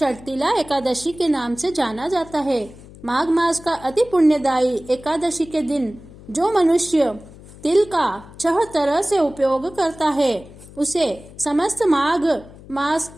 एकादशी के नाम से जाना जाता है। माघ मास का अति पुण्यदायी एकादशी के दिन जो मनुष्य तिल का 6 तरह से उपयोग करता है उसे समस्त माघ मास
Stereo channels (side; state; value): left; noise; hum, 20 dB below the sound